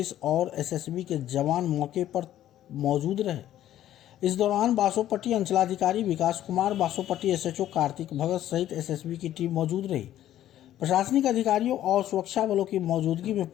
और एसएसबी के जवान मौके पर मौजूद रहे। इस दौरान बासोपट्टी अंचलाधिकारी विकास कुमार, बासोपट्टी एसएचओ कार्तिक भगत सहित एसएसबी की टीम मौजूद रही। प्रशासनिक अधिकारियों और सुरक्षा बलों की मौजूदगी में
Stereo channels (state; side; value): quieter; right; 12.4 dB